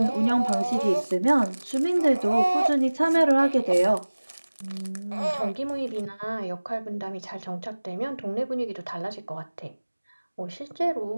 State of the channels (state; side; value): inverted; both; correlation -1.00